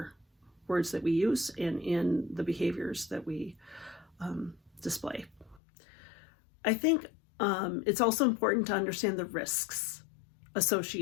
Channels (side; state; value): right; drops out; at 5.6 s